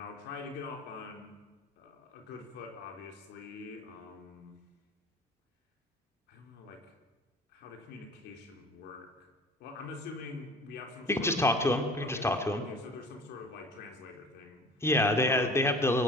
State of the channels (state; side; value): normal; both; correlation 0.44